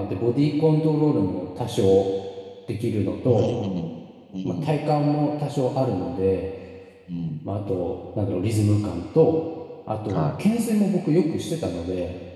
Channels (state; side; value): identical; both; correlation 1.00